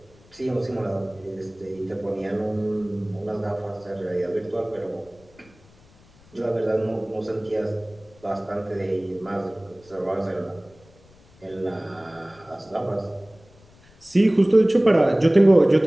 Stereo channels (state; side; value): noise; left; rumble, 27 dB below the sound